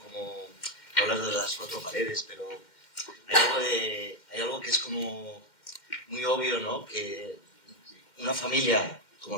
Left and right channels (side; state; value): right; late; 2.1 ms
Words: hablas de las cuatro paredes, pero hay algo que es como muy obvio, ¿no? Que una familia como